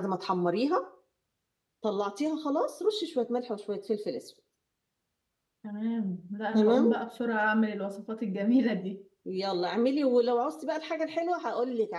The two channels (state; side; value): identical; both; correlation 1.00